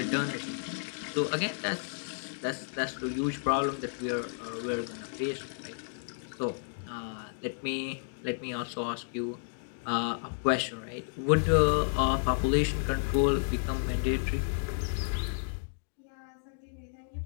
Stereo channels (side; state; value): right; silent; digital silence